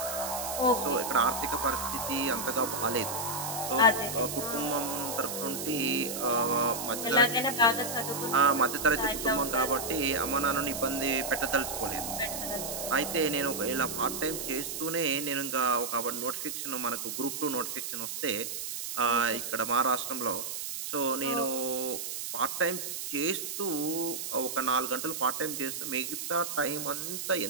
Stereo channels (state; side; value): noise; right; hiss, 5 dB below the sound